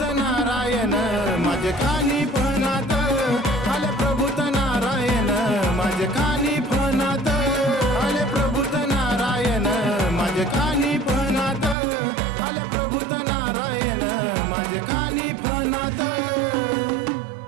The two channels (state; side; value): drops out; left; at 11.8 s